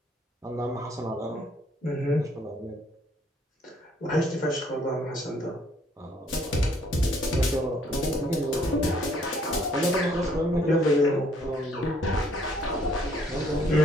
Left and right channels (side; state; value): both; normal; correlation 0.64